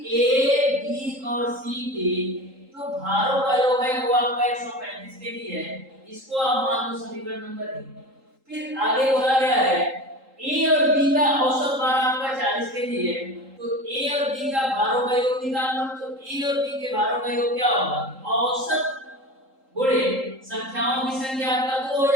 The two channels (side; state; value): left; late; 3.8 ms